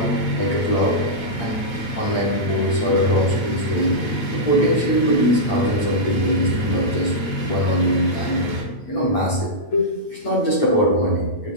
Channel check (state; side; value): late; right; 8.7 ms